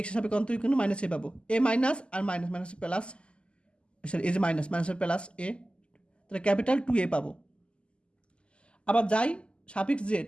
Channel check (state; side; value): late; right; 0.052 ms